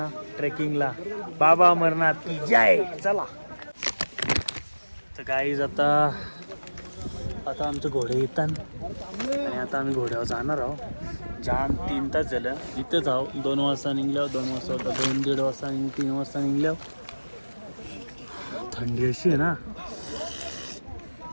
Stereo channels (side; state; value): both; inverted; correlation -1.00